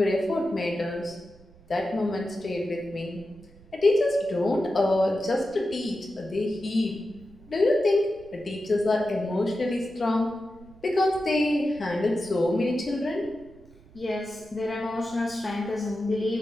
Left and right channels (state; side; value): noise; right; rumble, 24 dB below the sound